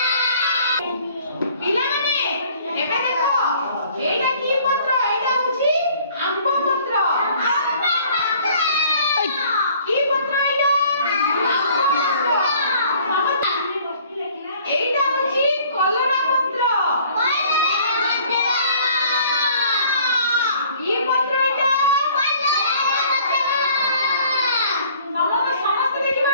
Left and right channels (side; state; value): both; inverted; correlation -0.55